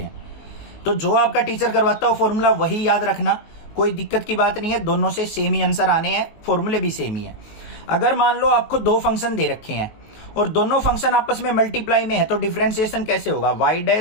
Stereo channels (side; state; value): right; late; 19 ms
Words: तो जो आपका टीचर करवाता है फॉर्मूला वही याद रखना, कोई दिक्कत की बात नहीं है, दोनों से सेम ही आंसर आने हैं, फॉर्मूले भी सेम ही है। अगर मान लो आपको दो फंक्शन दे रखे हैं और दोनों फंक्शन आपस में मल्टीप्लाई में है, तो डिफरेंशिएशन कैसे होगा, y